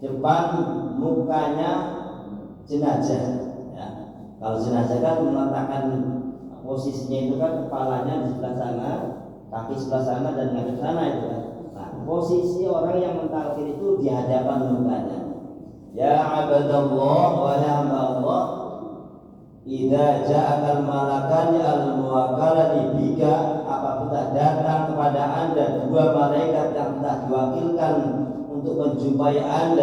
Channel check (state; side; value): identical; both; correlation 1.00